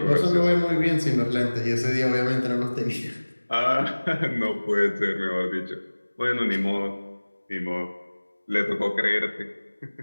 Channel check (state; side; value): inverted; both; correlation -1.00